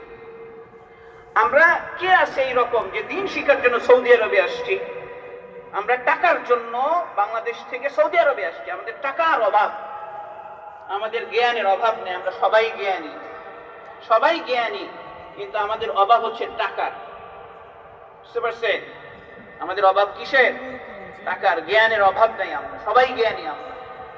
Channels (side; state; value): both; identical; correlation 1.00